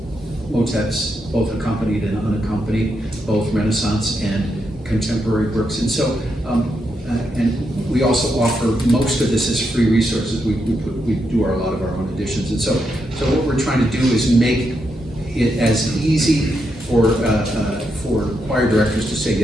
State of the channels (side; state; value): both; normal; correlation 0.82